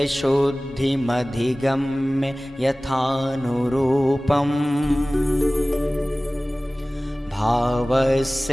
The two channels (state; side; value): normal; both; correlation 0.98